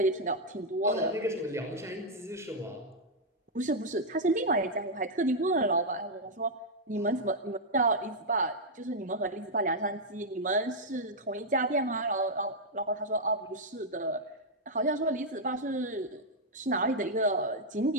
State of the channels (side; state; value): both; normal; correlation -0.04